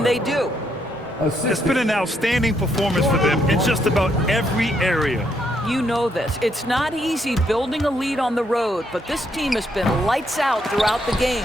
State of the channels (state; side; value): normal; both; correlation 0.75